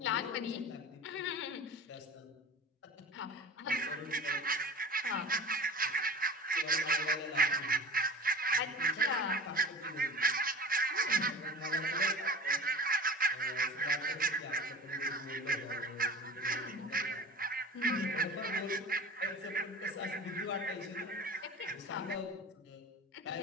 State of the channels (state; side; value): normal; both; correlation 0.37